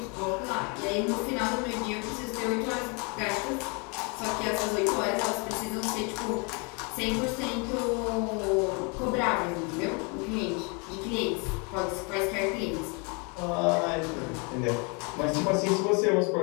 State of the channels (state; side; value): quieter; right; 32.8 dB